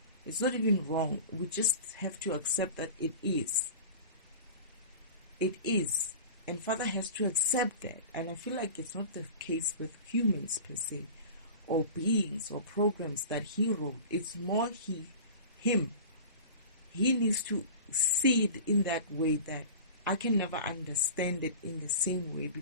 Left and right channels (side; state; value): both; inverted; correlation -0.36